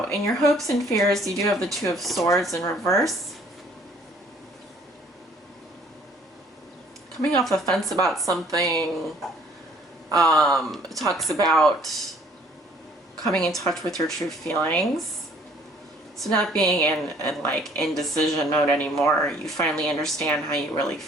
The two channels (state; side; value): normal; both; correlation 0.59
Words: in your hopes and fears, you do have the Two of Swords in reverse. Coming off the fence about something, it talks about coming in touch with your true feelings. So not being in like indecision mode anymore. You finally understand how you really